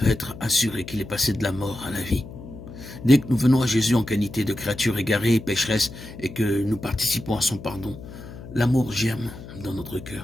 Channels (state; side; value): noise; left; hum, 14 dB below the sound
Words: être assuré qu'il est passé de la mort à la vie. Dès que nous venons à Jésus en qualité de créature égarée et pécheresse et que nous participons à son pardon, l'amour germe dans notre